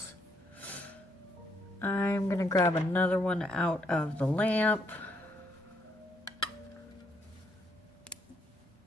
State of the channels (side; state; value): both; normal; correlation 0.73